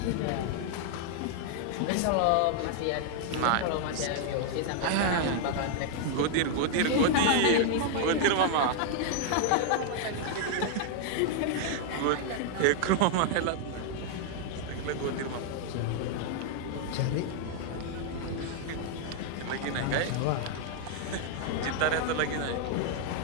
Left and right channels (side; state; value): both; different; correlation 0.00